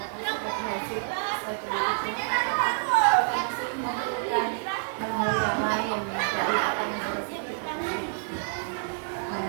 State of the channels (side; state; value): left; silent; 59 dB below the other